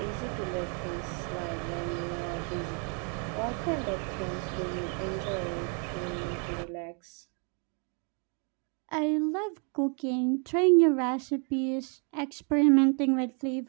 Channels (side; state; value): left; quieter; 38.5 dB